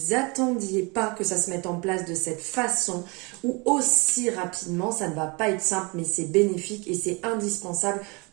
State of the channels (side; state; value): left; quieter; 28.8 dB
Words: attendiez pas que ça se mette en place de cette façon ou aussi rapidement. Ça ne va pas être simple, mais c'est bénéfique et c'est indispensable